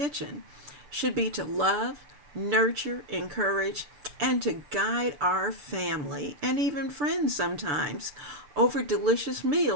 should be to love, nurture, encourage, and to guide our family and even friends sometimes over delicious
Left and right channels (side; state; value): left; late; 6.9 ms